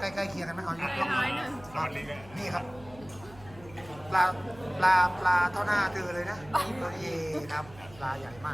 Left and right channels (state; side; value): noise; right; hum, 20 dB below the sound